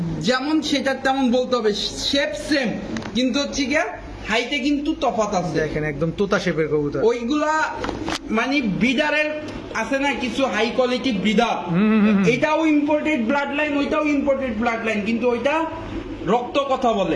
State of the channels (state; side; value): identical; both; correlation 1.00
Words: যেমন সেটা তেমন বলতে হবে, শেপ সেম কিন্তু হচ্ছে গিয়া হাইটে কিন্তু তফাৎ আছে। দেখেন একদম তোতা শেপের কবুতর। ওইগুলা মানে ব্রিডারের আছে না কিছু হাই কোয়ালিটি ব্রিডার, এটাও ইম্পোর্টেড ব্লাড লাইন, ওইটাও ইম্পোর্টেড ব্লাড লাইন, কিন্তু ওইটা রক্ত কথা